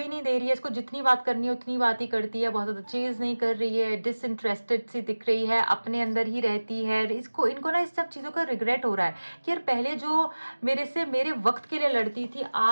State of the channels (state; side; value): inverted; both; correlation -1.00